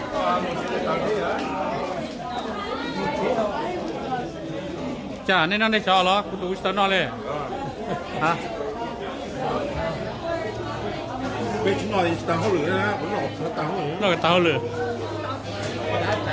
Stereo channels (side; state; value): both; identical; correlation 1.00